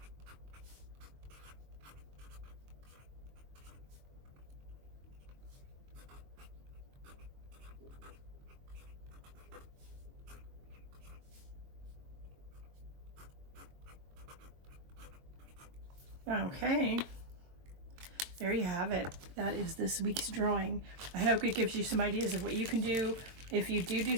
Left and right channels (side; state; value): left; late; 22 ms